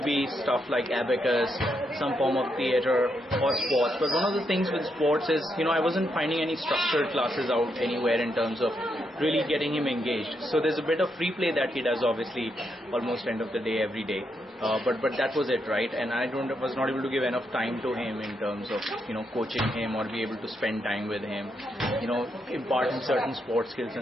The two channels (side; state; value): both; normal; correlation 0.80